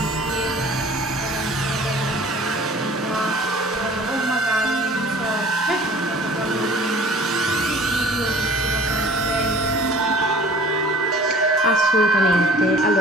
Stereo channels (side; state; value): both; normal; correlation 0.48